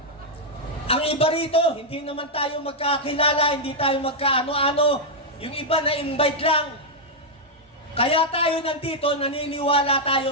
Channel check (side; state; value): both; normal; correlation -0.03